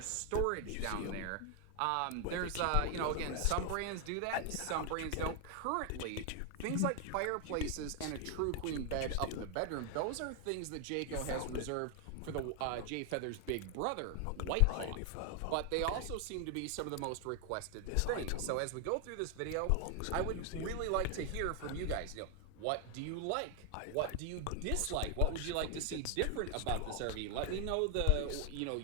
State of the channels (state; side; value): different; both; correlation 0.00